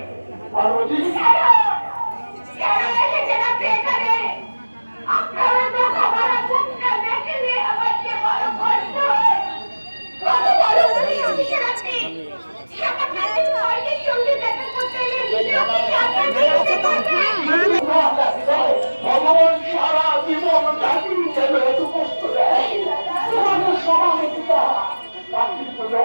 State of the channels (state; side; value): inverted; both; correlation -1.00